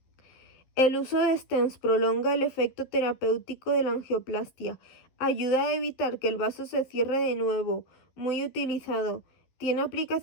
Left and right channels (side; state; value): right; late; 11 ms